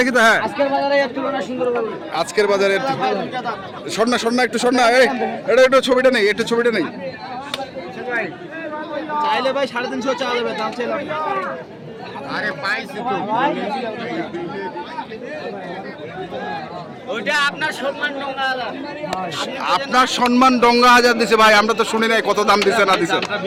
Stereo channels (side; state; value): both; identical; correlation 1.00